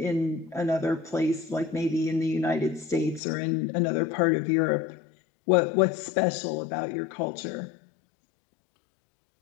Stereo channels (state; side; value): drops out; right; at 3.2 s